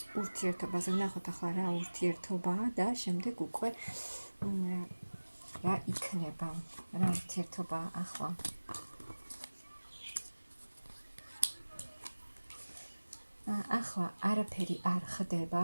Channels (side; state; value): both; inverted; correlation -1.00